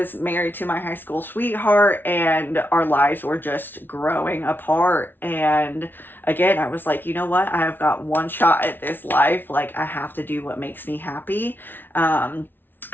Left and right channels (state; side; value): late; right; 0.097 ms